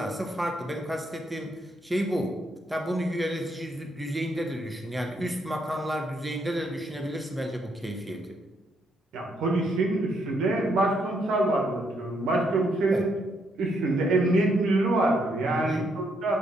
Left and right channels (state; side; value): normal; both; correlation 0.75